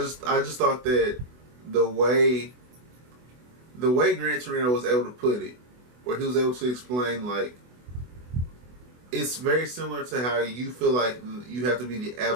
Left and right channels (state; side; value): late; left; 24 ms